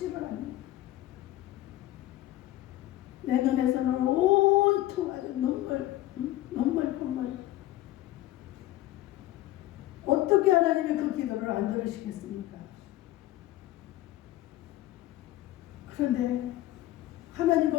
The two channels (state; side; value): quieter; right; 15.3 dB